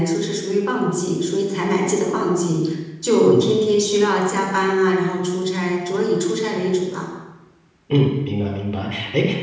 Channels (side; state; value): both; identical; correlation 1.00